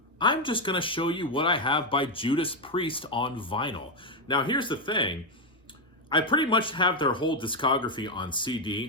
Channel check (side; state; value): both; normal; correlation 0.04